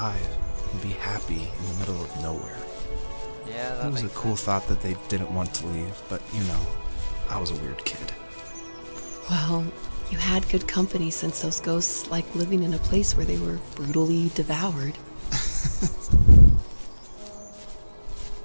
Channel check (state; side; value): inverted; both; correlation -1.00